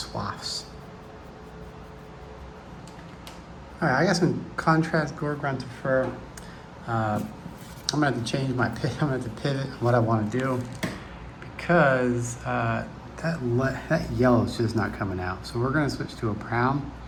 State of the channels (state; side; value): identical; both; correlation 1.00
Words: All right, I got some contrast gore grunted fur. I'm gonna have to change my pivot. I'm gonna have to pivot what I wanna do, because that yellow is just not coming out. So we're gonna switch to a brown.